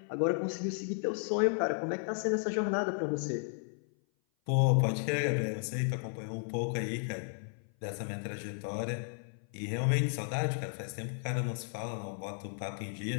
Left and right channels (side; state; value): right; silent; 55 dB below the other